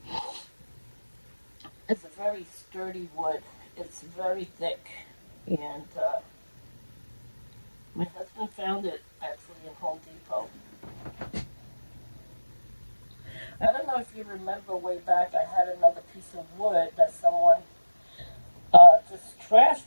is a very sturdy wood. It's very thick, and my husband found it actually in Home Depot. I don't know if you remember way back, I had another piece of wood that someone just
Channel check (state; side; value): inverted; both; correlation -1.00